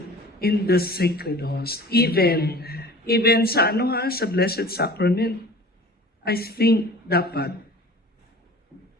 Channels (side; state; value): both; normal; correlation 0.43